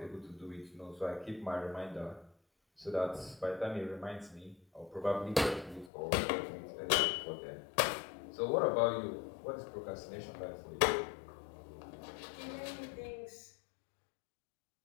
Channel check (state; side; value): drops out; right; at 5.9 s